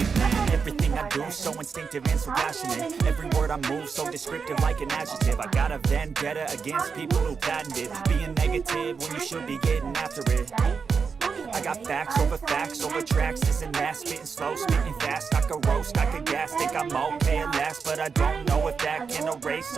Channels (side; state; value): left; quieter; 5.6 dB